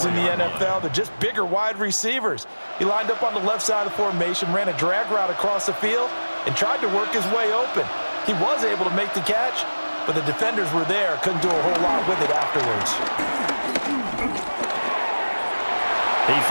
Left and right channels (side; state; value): both; inverted; correlation -1.00